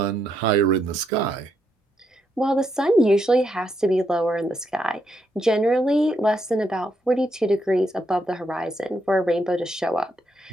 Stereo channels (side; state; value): both; normal; correlation 0.78